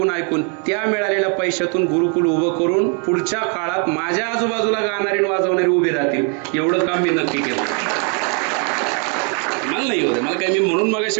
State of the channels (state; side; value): quieter; left; 38.3 dB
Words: ऐकून त्या मिळालेल्या पैशातून गुरुकुल उभं करून पुढच्या काळात माझ्या आजूबाजूला गाणारे वाजवणारे उभे राहतील, एवढं काम मी नक्की केलं. मला नाही होत, मला काय, मी म्हणून